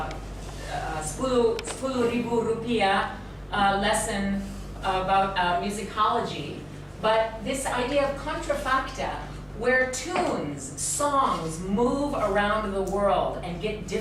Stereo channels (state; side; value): identical; both; correlation 1.00